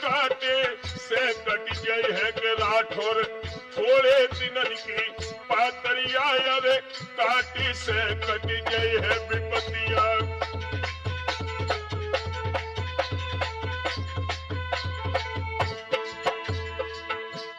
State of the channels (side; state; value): both; identical; correlation 1.00